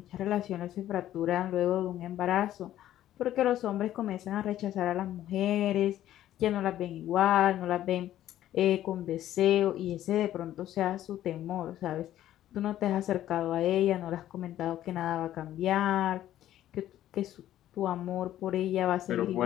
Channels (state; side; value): quieter; right; 12.7 dB